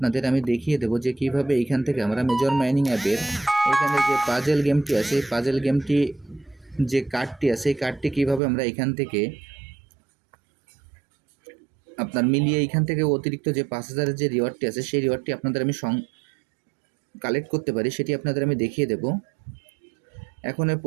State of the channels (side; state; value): left; drops out; at 8.4 s